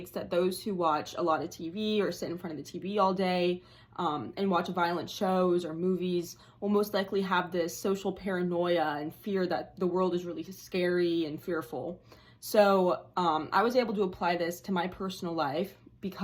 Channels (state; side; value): identical; both; correlation 1.00